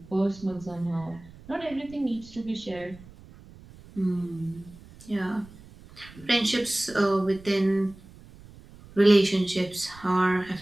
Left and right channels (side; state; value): right; noise; rumble, 21 dB below the sound